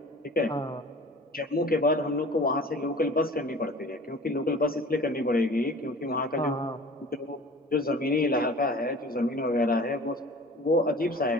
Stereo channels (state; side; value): normal; both; correlation 0.43